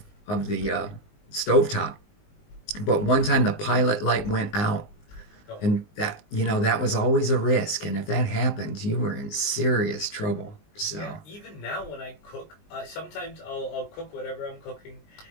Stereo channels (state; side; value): late; right; 19 ms